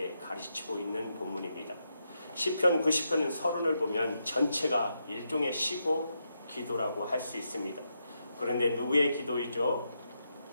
가르치고 있는 본문입니다. 시편 90편은 서론을 보면 전체가 일종의 시고 기도라고 할 수 있습니다. 그런데 누구의 기도이죠?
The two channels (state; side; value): inverted; both; correlation -0.83